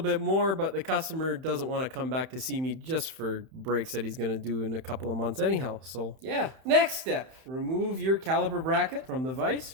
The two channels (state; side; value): late; left; 31 ms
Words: more, but the customer doesn't want to come back to see me just for brakes that he's going to do in a couple of months anyhow. So yeah, next step, remove your caliper bracket from the vise,